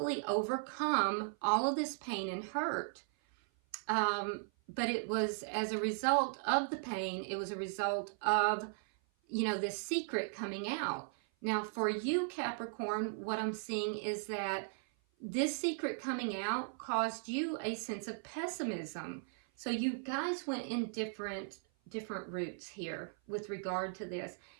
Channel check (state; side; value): silent; left; 53 dB below the other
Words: overcome all of this pain and hurt. But it was as a result of the pain. It was a result of, you know, this secret coming out. Now, for you, Capricorn, what I'm seeing is that this secret coming out caused you a sense of pessimism. So you guys went in different routes here with regard to this.